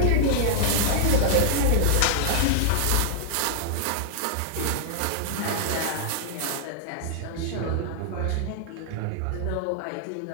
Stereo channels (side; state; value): both; different; correlation -0.01